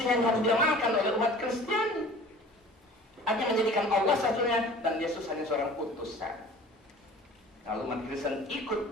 yang harus diamalkan oleh umat Kristen. Artinya menjadikan Allah satunya dan Yesus hanya seorang utusan. Kalau umat Kristen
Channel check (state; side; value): normal; both; correlation 0.45